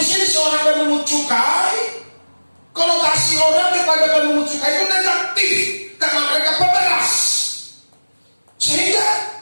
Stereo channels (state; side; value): inverted; both; correlation -1.00